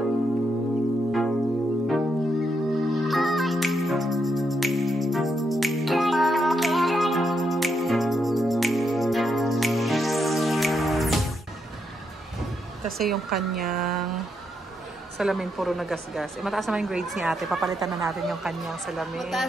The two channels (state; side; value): normal; both; correlation 0.80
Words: Kasi yung kanyang salamin puro nagasgas. Mataas naman yung grades ni ate. Papalitan na natin yung kanyang salamin.